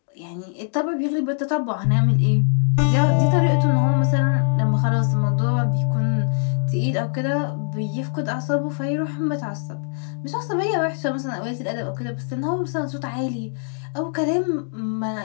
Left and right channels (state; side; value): silent; right; digital silence